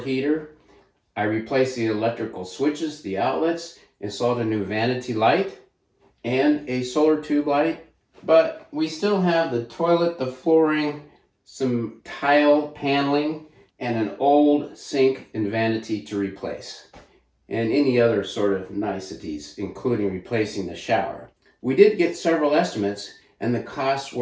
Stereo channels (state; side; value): identical; both; correlation 1.00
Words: heater. I replaced the electrical switches, the outlets, installed a new vanity light and a solar tube light. But we still have the toilet, the flooring, some tile paneling, and an old sink and vanity to replace, and any other sort of niceties, including replacing the shower. We did get several estimates, and the costs